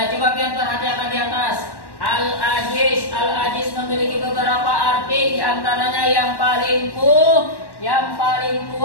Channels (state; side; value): late; right; 1.1 ms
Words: coba kalian perhatikan di atas. Al-Aziz memiliki beberapa arti, diantaranya yang paling kuat.